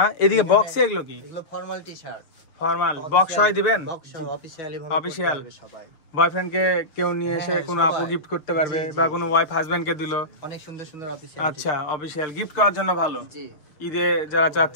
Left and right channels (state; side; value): late; right; 6.6 ms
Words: এদিকে বক্সে এগুলো কি? এগুলো ফর্মাল টি-শার্ট, ফর্মাল বক্স হয় দিবেন? অফিশিয়ালি অফিসিয়াল সবাই। বয়ফ্রেন্ডকে কেউ নিয়ে এসে কোনো আপু গিফট করতে পারবে, বা কোনো ওয়াইফ হাজবেন্ডকে দিল। অনেক সুন্দর সুন্দর অফিসিয়াল। আচ্ছা, অফিসিয়াল গিফট করার জন্য ভালো, ঈদে যারা